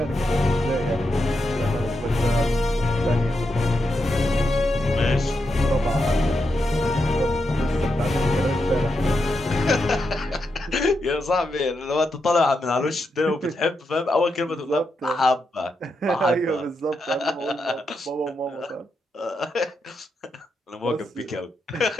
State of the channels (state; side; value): normal; both; correlation 0.85